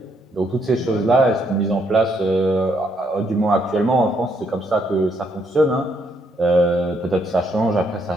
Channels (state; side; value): normal; both; correlation 0.73